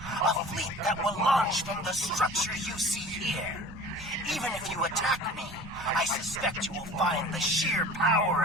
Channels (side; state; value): both; normal; correlation 0.42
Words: A fleet that will launch from the structure you see here. Even if you attack me, I suspect you will find the sheer power